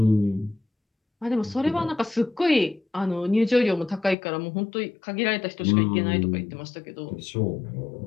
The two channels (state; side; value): drops out; right; at 4.2 s